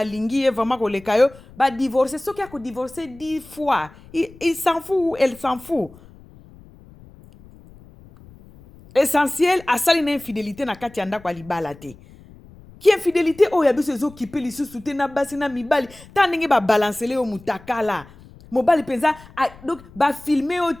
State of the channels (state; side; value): noise; left; rumble, 22 dB below the sound